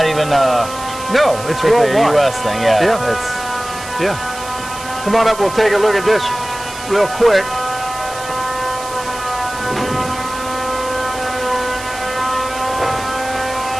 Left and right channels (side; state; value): right; noise; hiss, 13 dB below the sound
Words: even no, it's strictly a worldwide. US thing. Yeah. Yeah. It's Yeah. Come on up, we'll take a look at this real quick.